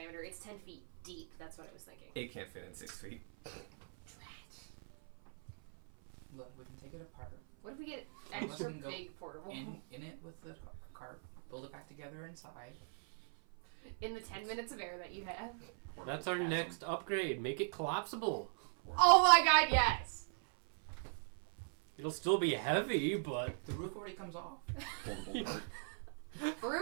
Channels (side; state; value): left; silent; 51 dB below the other